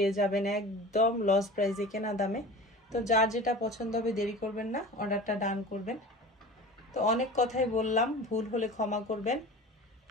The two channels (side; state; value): both; normal; correlation 0.37